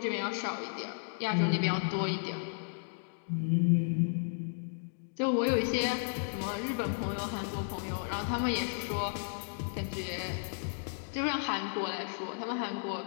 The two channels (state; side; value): silent; right; digital silence